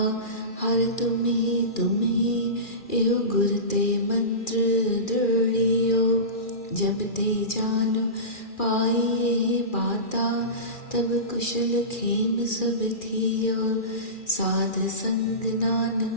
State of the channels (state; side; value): late; right; 2.4 ms